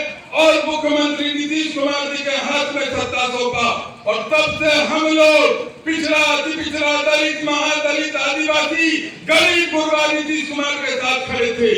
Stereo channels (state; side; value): identical; both; correlation 1.00